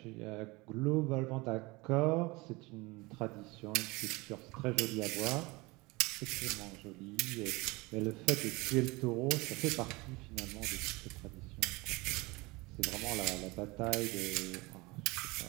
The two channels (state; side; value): quieter; left; 23.9 dB